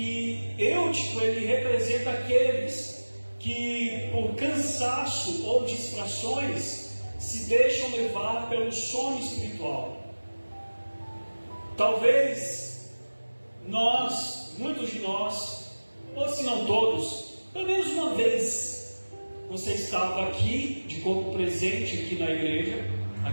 Eutico, ele representa aqueles que por cansaço ou distrações se deixam levar pelo sono espiritual. Talvez muitos de nós, ou se não todos, pelo menos uma vez você estava aqui, de corpo presente aqui na igreja,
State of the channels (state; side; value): inverted; both; correlation -1.00